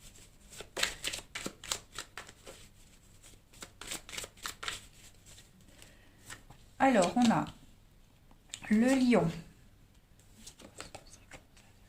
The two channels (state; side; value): identical; both; correlation 1.00